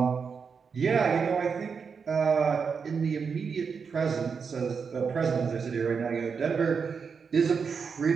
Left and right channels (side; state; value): left; quieter; 5.8 dB